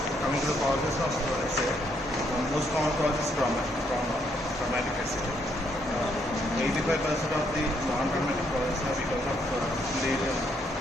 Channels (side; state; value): both; normal; correlation 0.73